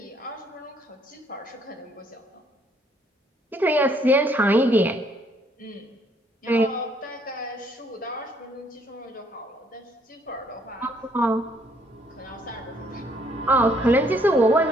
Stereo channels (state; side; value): normal; both; correlation 0.66